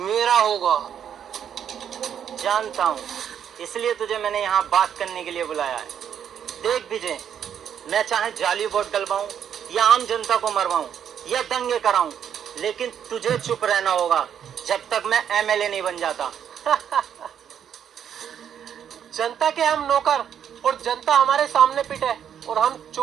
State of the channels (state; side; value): quieter; left; 8.8 dB